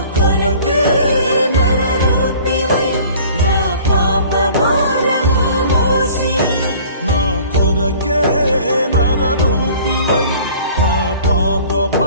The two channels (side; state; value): both; inverted; correlation -0.49